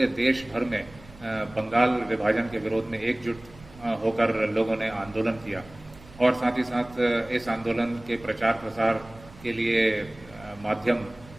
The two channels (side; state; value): right; noise; rumble, 21 dB below the sound